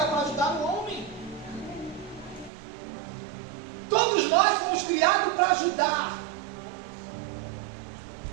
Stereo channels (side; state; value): left; drops out; at 2.5 s